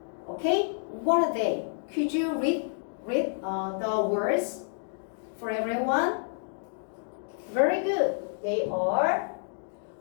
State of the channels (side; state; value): right; silent; digital silence